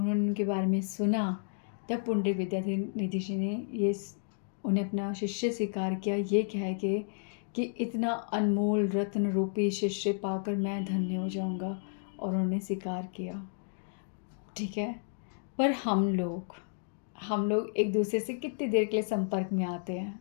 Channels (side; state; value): right; silent; digital silence